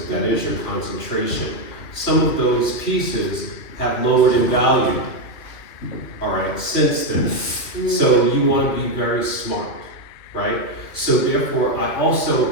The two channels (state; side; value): late; right; 3.0 ms